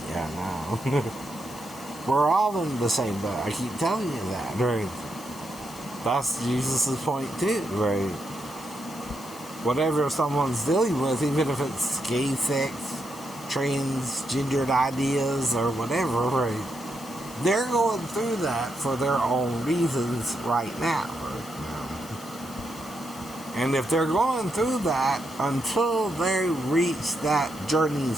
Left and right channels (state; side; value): noise; left; hiss, 18 dB below the sound